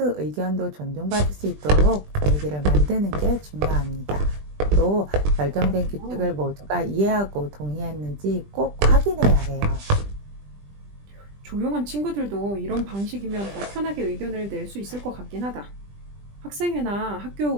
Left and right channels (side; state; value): left; late; 20 ms